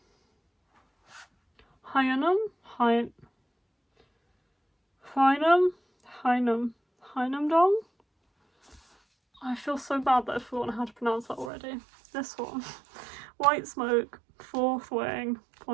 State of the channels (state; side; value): drops out; left; at 11.5 s